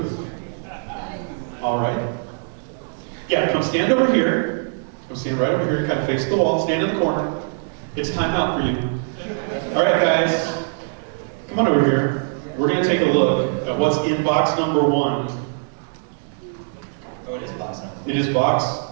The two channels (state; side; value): silent; left; 64 dB below the other